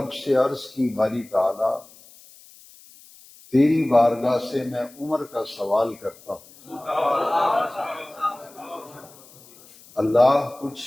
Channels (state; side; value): noise; left; hiss, 23 dB below the sound